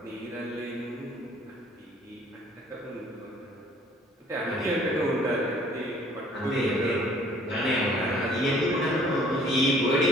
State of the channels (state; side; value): normal; both; correlation 0.56